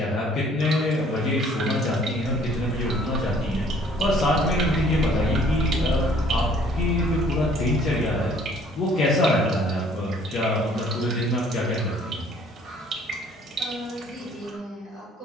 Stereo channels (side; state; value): both; normal; correlation 0.58